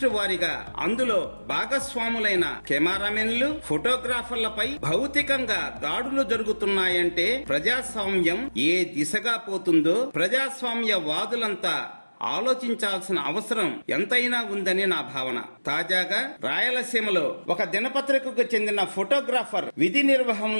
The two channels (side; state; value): both; inverted; correlation -1.00